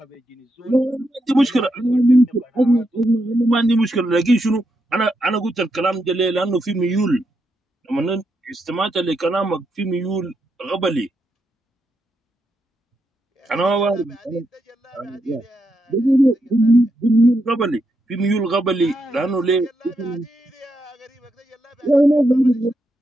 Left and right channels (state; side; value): normal; both; correlation 0.82